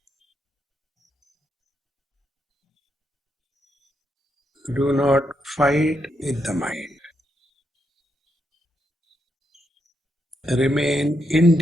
Do not fight with the mind. Remain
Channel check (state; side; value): normal; both; correlation 0.81